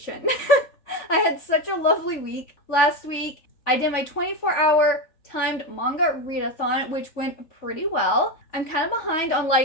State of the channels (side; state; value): right; late; 3.4 ms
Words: I had such a lovely week. Last week, I did my 24-hour timed manga readathon, which went pretty well. I'm kind of behind on